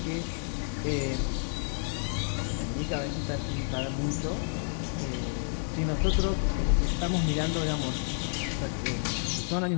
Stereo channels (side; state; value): right; silent; digital silence